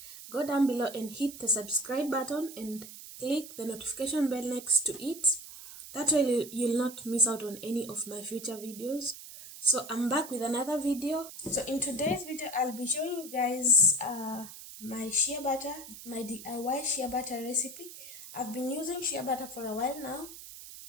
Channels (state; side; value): noise; right; hiss, 14 dB below the sound